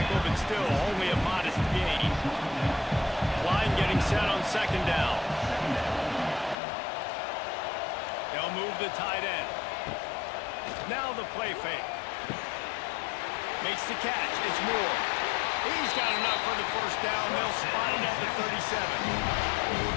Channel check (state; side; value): drops out; right; at 6.6 s